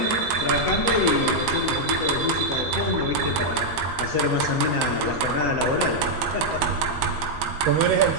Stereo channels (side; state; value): left; late; 13 ms